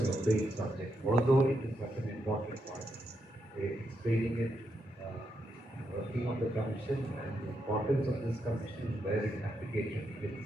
opaque subject, although it is such an important one. Explaining it, working on the commission and the importance of this commission, where its application begins,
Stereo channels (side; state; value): both; normal; correlation 0.82